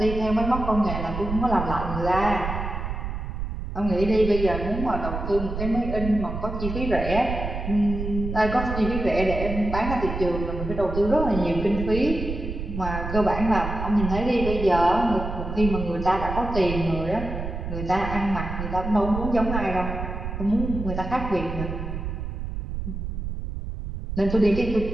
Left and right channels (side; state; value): right; noise; rumble, 5 dB below the sound